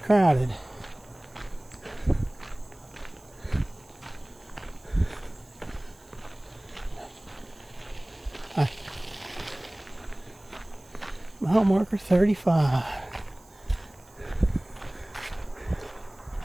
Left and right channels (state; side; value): noise; right; hiss, 27 dB below the sound